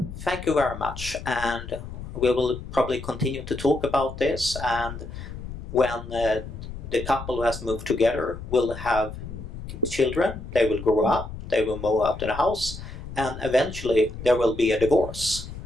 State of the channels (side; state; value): left; noise; rumble, 10 dB below the sound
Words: thank you very much, and we will probably continue to talk about this, and when the couple who has moved together will have children, they will grow up, they will move out of the house, and eventually there will be a divorce,